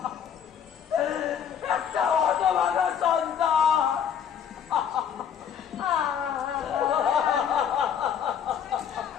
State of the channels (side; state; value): right; quieter; 8.2 dB